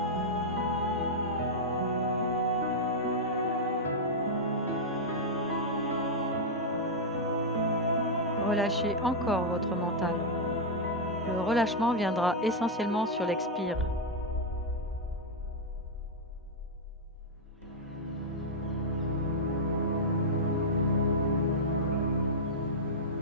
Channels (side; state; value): both; normal; correlation -0.04